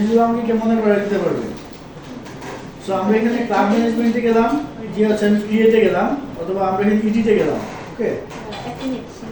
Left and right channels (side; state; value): both; identical; correlation 1.00